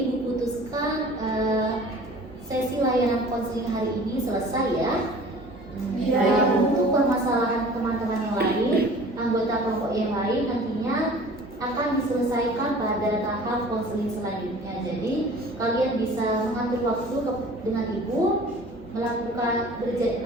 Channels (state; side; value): normal; both; correlation 0.46